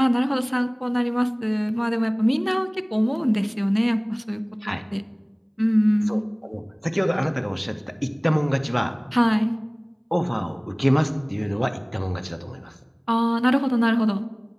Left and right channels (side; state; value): both; identical; correlation 1.00